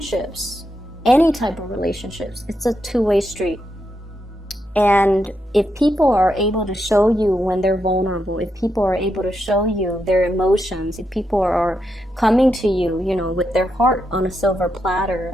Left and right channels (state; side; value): normal; both; correlation 0.83